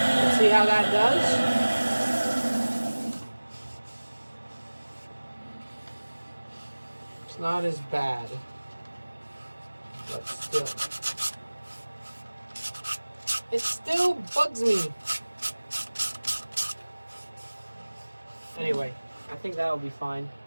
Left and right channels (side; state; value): both; inverted; correlation -1.00